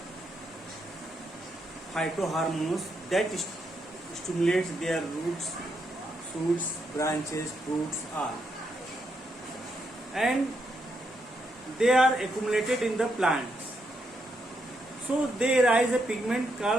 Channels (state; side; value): normal; both; correlation 0.79